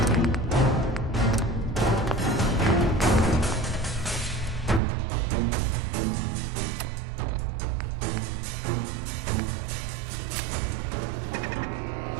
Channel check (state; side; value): drops out; left; at 4.8 s